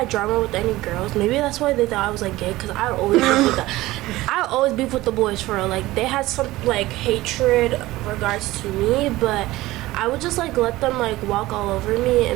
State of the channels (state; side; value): quieter; left; 17.9 dB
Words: drama with any girls. Maybe that's why they thought I was, like, gay. Because I would always beef with the boys, for real. Like, they had some, like, hatred regards to me. But I would just, like, let them, like, walk all over me